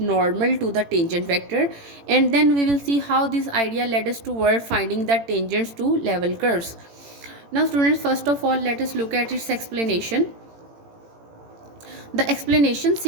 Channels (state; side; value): late; left; 18 ms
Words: to the tangent vector, and then we will see how this idea led us toward finding the tangents to level curves. Now students, first of all let us look at its explanation. The explanation